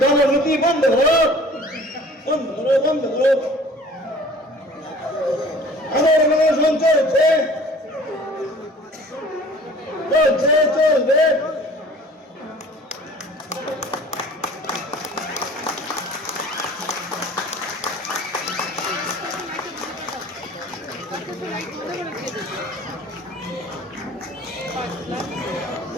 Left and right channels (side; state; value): both; normal; correlation 0.48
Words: বন্ধ করো, বন্ধ করো, বন্ধ করো। আমার অনশন চলছে, চলছে চলবে।